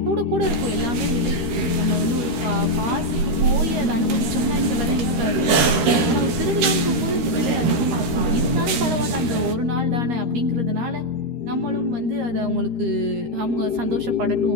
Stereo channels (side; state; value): left; late; 13 ms